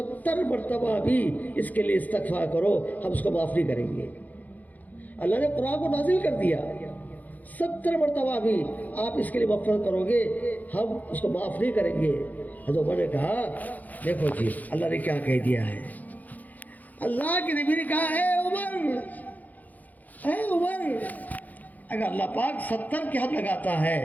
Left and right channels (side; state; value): right; late; 0.081 ms